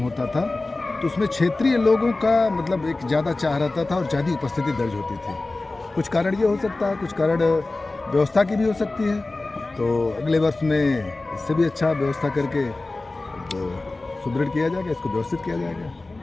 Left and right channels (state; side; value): quieter; right; 3.2 dB